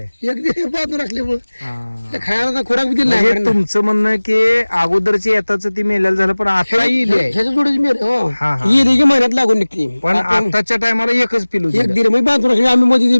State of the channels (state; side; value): inverted; both; correlation -1.00